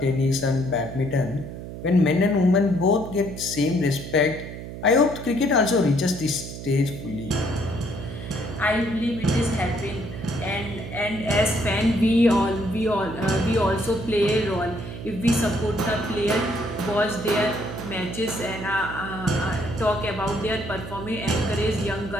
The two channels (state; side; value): noise; right; hum, 10 dB below the sound